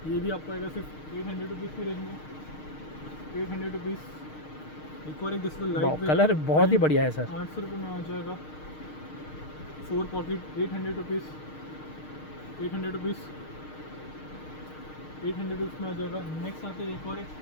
ये भी आपको आएगा सिर्फ 800 रुपीज़ की रेंज में, 800 रुपीज़। एक और एक जैसे वाओ, लाइट कलर बहुत ही बढ़िया है सर। 800 रुपये में आ जाएगा। 4 पॉकेट 800 रुपीज़, 800 रुपीज़, 800 रुपीज़ में आ जाएगा। नेक्स्ट आते हैं एक और एक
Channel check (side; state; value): right; late; 6.5 ms